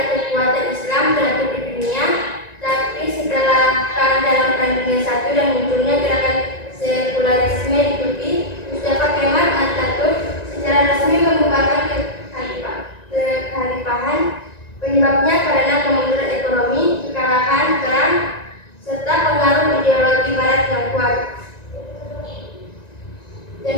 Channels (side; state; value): right; late; 1.9 ms